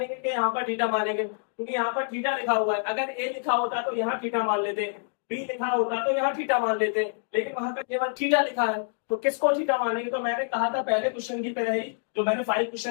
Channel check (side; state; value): right; silent; digital silence